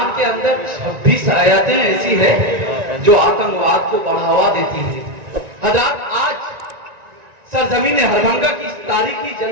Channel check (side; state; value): left; late; 1.9 ms